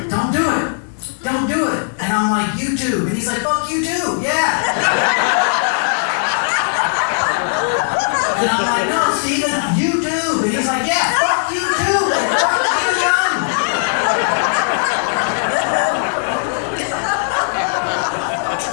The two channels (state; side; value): silent; right; 68 dB below the other